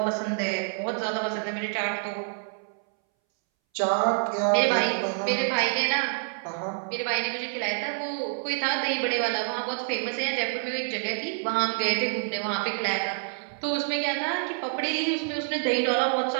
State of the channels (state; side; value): silent; left; 60 dB below the other